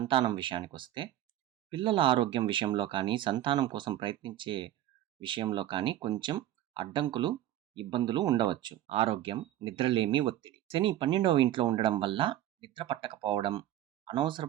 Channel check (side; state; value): left; quieter; 13.0 dB